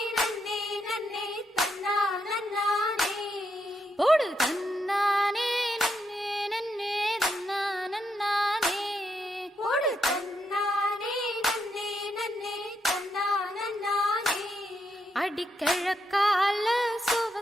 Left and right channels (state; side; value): normal; both; correlation 0.80